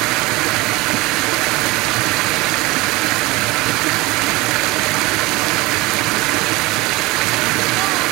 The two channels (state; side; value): quieter; left; 22.1 dB